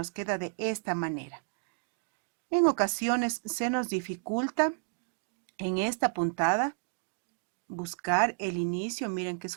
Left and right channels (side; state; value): left; quieter; 38.4 dB